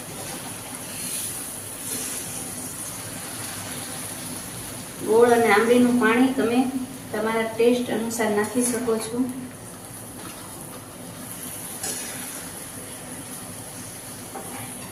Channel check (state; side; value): identical; both; correlation 1.00